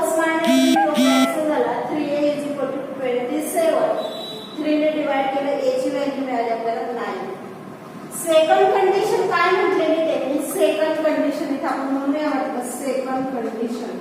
मायनस कॅन्सल झाला 3a इज इक्वल टू 27 3 ने डिवाइड केलं a ची व्हॅल्यू मिळाली आपल्याला 9. सेकंड कंडिशन काय म्हटलेली त्यांनी सेकंड कंडिशन इथे आपण म्हणूया म्हटलं सेकंड कंडिशन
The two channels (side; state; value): both; identical; correlation 1.00